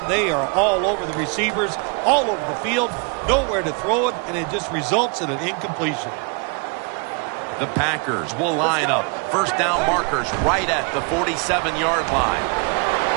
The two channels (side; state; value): left; quieter; 34.5 dB